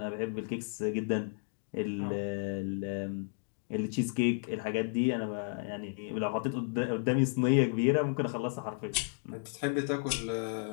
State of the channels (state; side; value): silent; right; digital silence